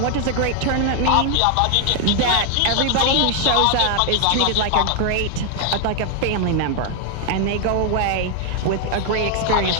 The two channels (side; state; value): both; different; correlation 0.00